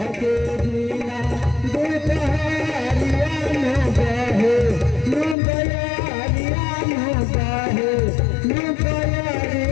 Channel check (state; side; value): drops out; right; at 5.4 s